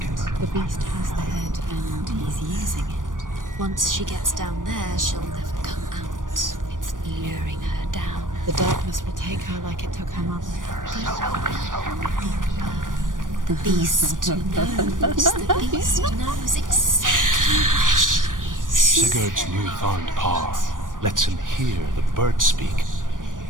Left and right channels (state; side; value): late; left; 0.88 ms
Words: The beast has the head and he's using it. Once she gets down there, she'll never come out. It's luring her down. The darkness will take her like it took her mother. The beast knows. The beast knows exactly where she is. Sigurd's newfound power lets him hear the birds speak,